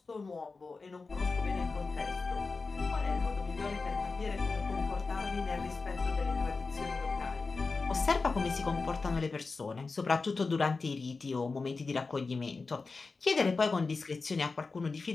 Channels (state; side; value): quieter; right; 4.1 dB